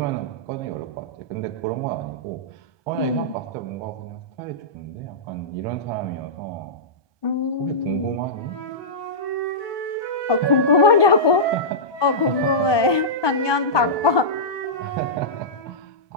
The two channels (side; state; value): right; late; 1.2 ms